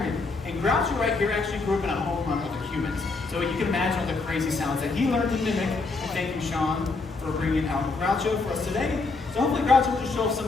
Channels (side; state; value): right; quieter; 3.8 dB